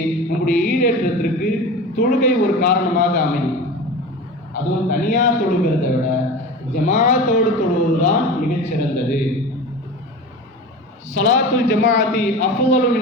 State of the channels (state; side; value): normal; both; correlation 0.32